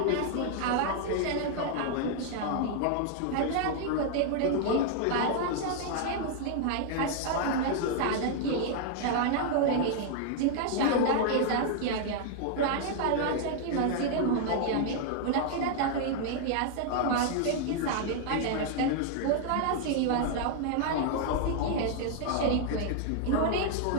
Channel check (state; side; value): different; both; correlation 0.00